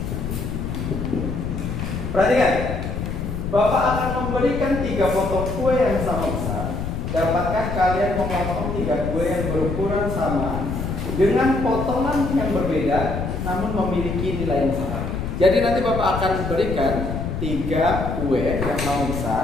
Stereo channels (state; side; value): noise; left; rumble, 4 dB below the sound